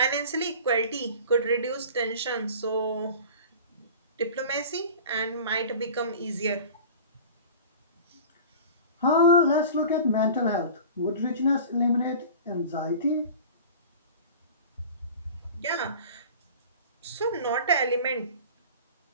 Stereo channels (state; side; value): inverted; both; correlation -0.39